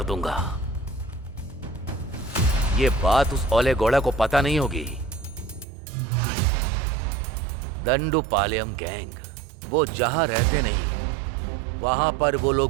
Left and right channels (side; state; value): left; drops out; at 5.7 s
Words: दूंगा। ये बात उस ओले गौड़ा को पता नहीं होगी। दंडूपालెం गैंग वो जहां रहते नहीं, वहां पर वो